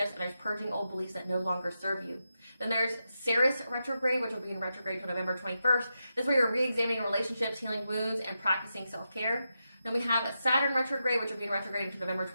and there's purging old beliefs that no longer serve you. Then there's Ceres retrograde, which will be in retrograde until November 21st. This is where you're re-examining relationships, healing wounds, and practicing self-care. Then we have Saturn retrograde, which will be in retrograde until November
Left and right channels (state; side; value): inverted; both; correlation -0.87